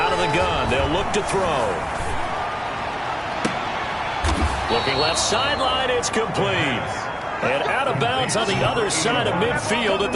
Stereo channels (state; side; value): identical; both; correlation 1.00